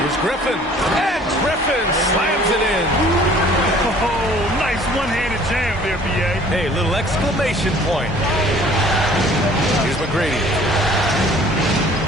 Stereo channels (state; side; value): normal; both; correlation 0.53